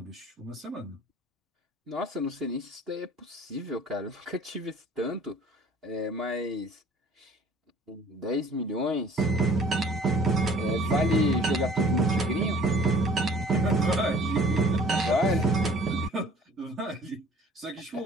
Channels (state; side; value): normal; both; correlation 0.51